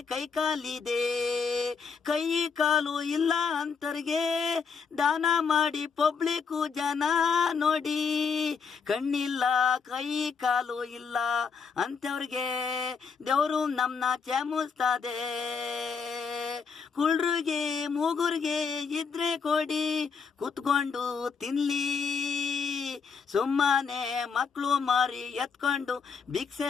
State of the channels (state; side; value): quieter; right; 5.7 dB